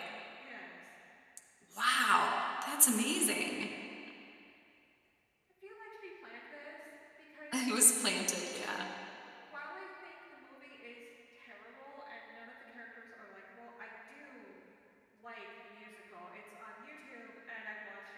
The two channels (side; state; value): both; identical; correlation 1.00